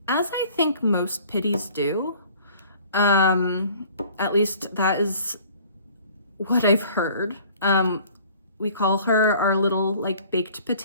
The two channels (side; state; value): both; inverted; correlation -0.51